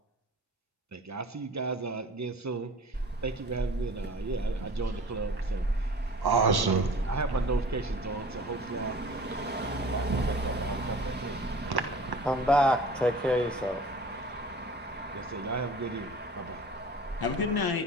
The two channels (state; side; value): normal; both; correlation 0.43